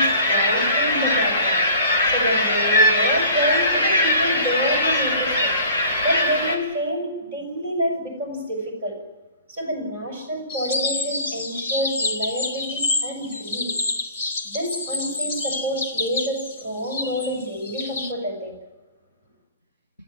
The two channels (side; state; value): both; inverted; correlation -0.46